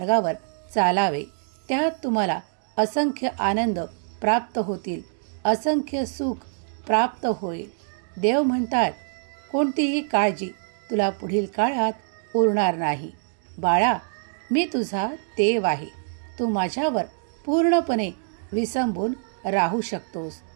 चालावे. त्यात तुम्हाला असंख्य आनंद प्राप्त होतील, असंख्य सुख प्राप्त होईल. देव म्हणतात, कोणतीही काळजी तुला पुढील काळात उरणार नाही. बाळा, मी तुझा देव आहे. तू माझ्यावर पूर्णपणे विसंबून राहू शकतोस.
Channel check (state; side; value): silent; left; digital silence